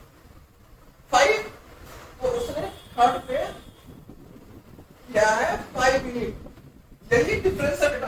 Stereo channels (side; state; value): both; identical; correlation 1.00